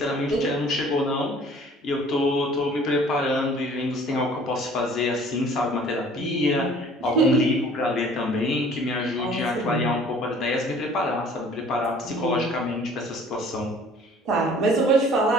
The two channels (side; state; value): both; normal; correlation 0.52